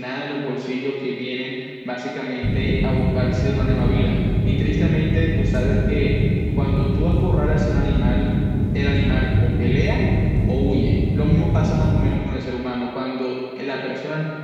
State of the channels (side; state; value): both; identical; correlation 1.00